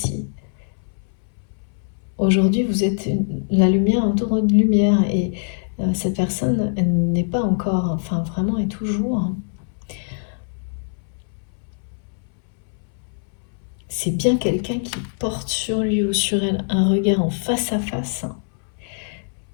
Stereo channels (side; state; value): right; silent; 63 dB below the other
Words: Aujourd'hui, vous êtes la lumière entourée de lumière et cette personne n'est pas encore, enfin vraiment est toujours. C'est bien quelqu'un qui porte sur lui ou sur elle un regard en face à face, hein,